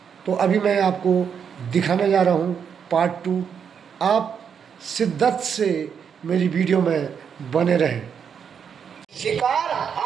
तो अभी मैं आपको दिखाने जा रहा हूँ पार्ट 2। आप शिद्दत से मेरी वीडियो में बने रहें। शिकार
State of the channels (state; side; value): quieter; left; 7.3 dB